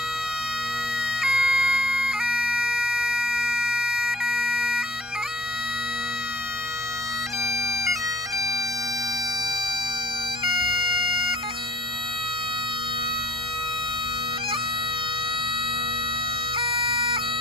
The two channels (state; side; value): normal; both; correlation 0.50